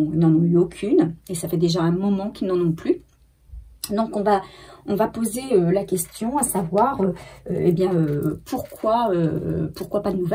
ont eu aucune. Et ça fait déjà un moment qu'ils n'en ont plus. Donc on va poser la question, à savoir, pourquoi pas de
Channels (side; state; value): both; identical; correlation 1.00